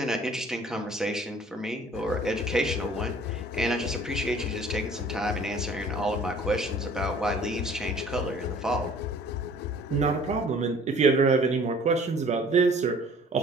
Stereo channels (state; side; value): normal; both; correlation 0.52